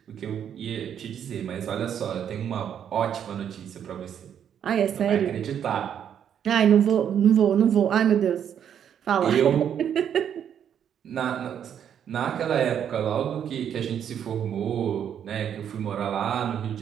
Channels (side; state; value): left; quieter; 8.9 dB